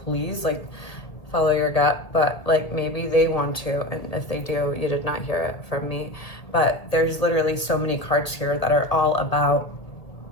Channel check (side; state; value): right; late; 1.8 ms